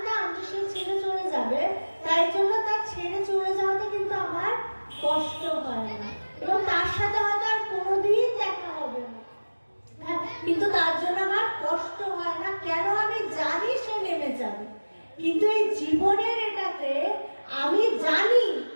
যে সে ছেড়ে চলে যাবে, তাই জন্য তার ছেড়ে চলে যাওয়াতে কিন্তু আমার কষ্ট হয় না, এবং তার সাথে হয়তো আর কোনোদিন দেখা হবে না, কিন্তু তার জন্য আমার কষ্ট হয় না। কেন? আমি জানি সে নেমে যাবে। কিন্তু এই জীবনের এটাতে আমি জানি,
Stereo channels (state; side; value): inverted; both; correlation -1.00